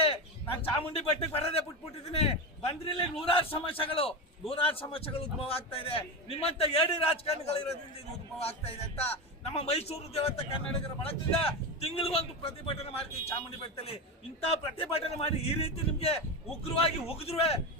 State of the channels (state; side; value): normal; both; correlation 0.19